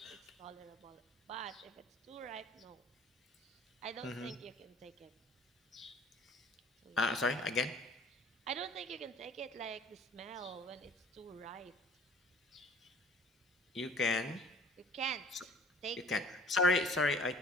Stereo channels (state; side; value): normal; both; correlation 0.50